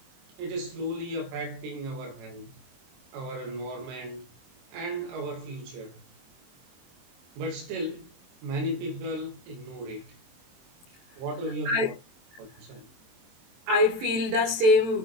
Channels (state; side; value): late; left; 23 ms